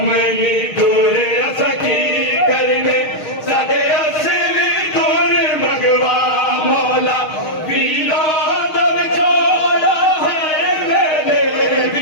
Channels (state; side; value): late; right; 6.4 ms